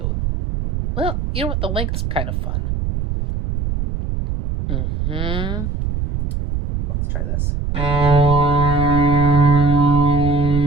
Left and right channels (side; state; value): right; noise; rumble, 2 dB below the sound